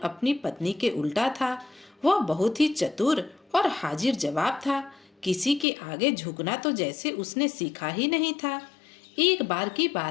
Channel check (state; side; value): drops out; right; at 5.7 s